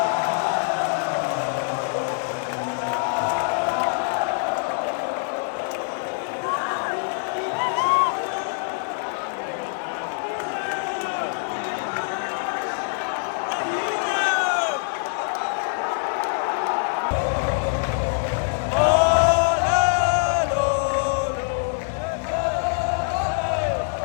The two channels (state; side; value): silent; right; 62 dB below the other